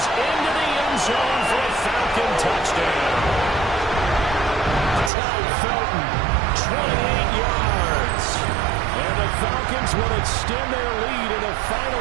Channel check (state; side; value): drops out; left; at 5.1 s